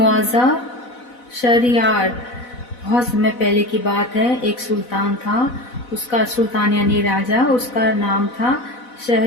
Shahryar. बहुत समय पहले की बात है. एक सुल्तान था. उसका सुल्तान यानी राजा, उसका नाम था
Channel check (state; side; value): late; right; 4.0 ms